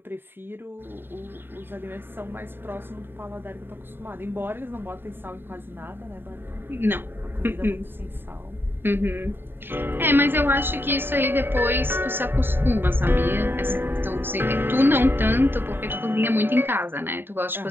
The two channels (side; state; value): left; late; 0.10 ms